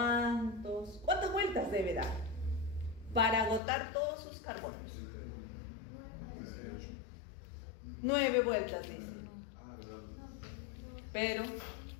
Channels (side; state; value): right; drops out; at 3.6 s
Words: vueltas debe dar para agotar todos sus carbonos? 9 vueltas, dice. Pero,